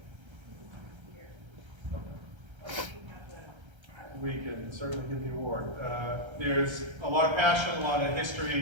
Okay. We can certainly give the award. There's a lot of passion, a lot of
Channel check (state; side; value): late; left; 1.3 ms